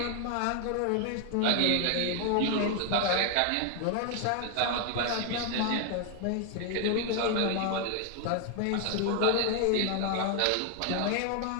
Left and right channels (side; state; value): both; different; correlation 0.00